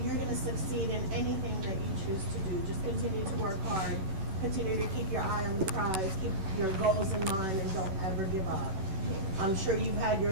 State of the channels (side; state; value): left; late; 11 ms